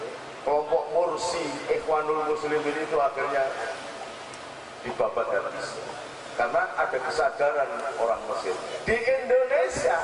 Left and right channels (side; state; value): both; identical; correlation 1.00